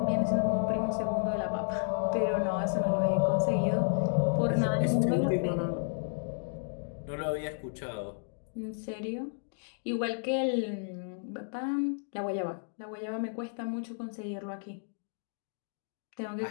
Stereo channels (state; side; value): silent; right; digital silence